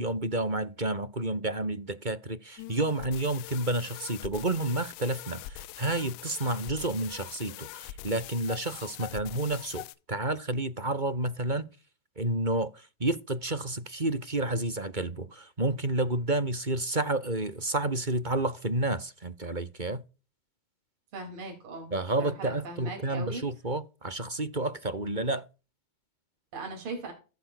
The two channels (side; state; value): left; late; 2.2 ms